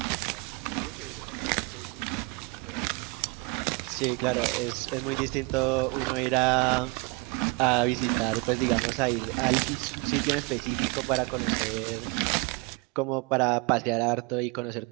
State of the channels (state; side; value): quieter; left; 26.7 dB